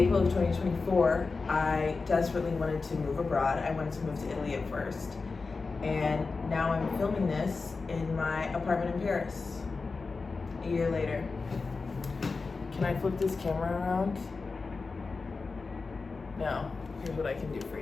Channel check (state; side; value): quieter; right; 4.2 dB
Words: of 2024, I desperately wanted to move abroad. I wanted to move to Italy at first. And now I'm filming this in my apartment in Paris, a year later. Can I flip this camera around? No, here's what I can do for